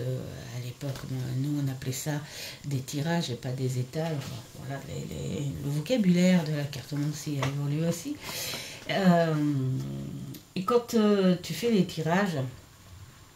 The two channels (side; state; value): both; identical; correlation 1.00